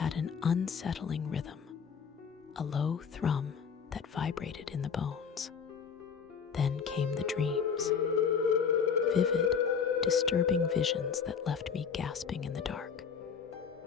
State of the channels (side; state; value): right; quieter; 6.5 dB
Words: an unsettling rhythm, a low thrum that vibrated in the bones. Then came the dreams, vivid, disturbing visions that left me gasping in the dark.